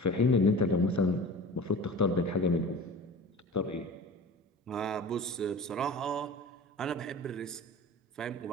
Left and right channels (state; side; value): normal; both; correlation 0.38